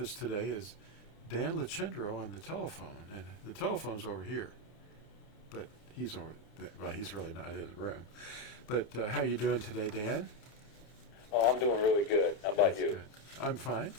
today is Dan Lachendro on the telephone, and the telephone's over here, but he's over there. Well, he's really not in the room. But how you doing today, Dan? Oh, I'm doing really good. How about you? Good. I'm fine.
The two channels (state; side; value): late; right; 30 ms